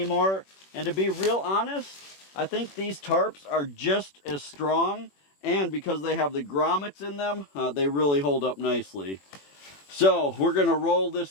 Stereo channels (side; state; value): right; late; 21 ms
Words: And to be real honest, I think these tarps are just as strong, and because they have the grommets in them, they really hold up nicely. So we're going to roll